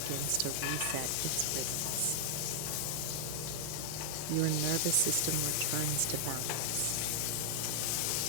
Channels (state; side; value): different; both; correlation -0.01